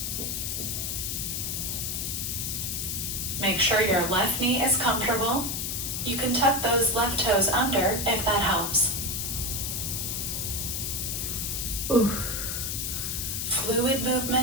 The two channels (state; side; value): noise; left; hiss, 2 dB below the sound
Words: Make sure your left knee is comfortable. You can tuck those left toes under if that helps. Ooh. Fluid